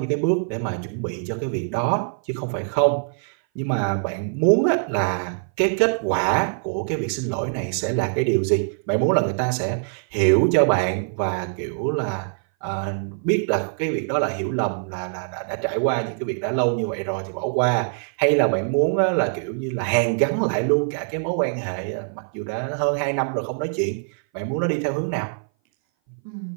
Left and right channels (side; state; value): left; silent; 59 dB below the other